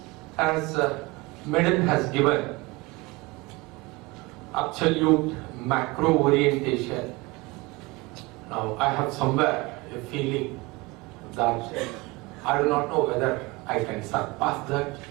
As Madam has given absolute macro orientation, now I have somewhere a feeling that I do not know whether I can surpass that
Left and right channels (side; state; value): left; quieter; 23.9 dB